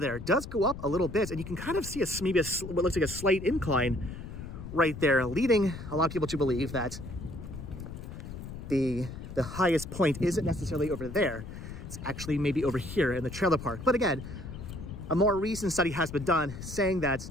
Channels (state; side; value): noise; left; rumble, 10 dB below the sound